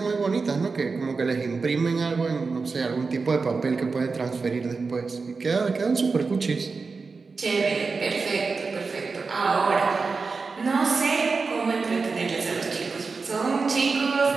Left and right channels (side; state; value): left; quieter; 4.5 dB